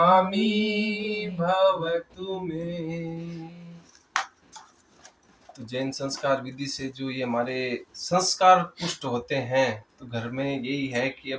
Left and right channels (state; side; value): identical; both; correlation 1.00